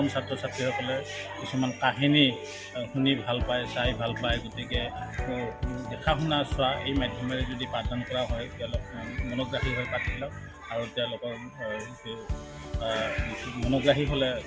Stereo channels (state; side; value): identical; both; correlation 1.00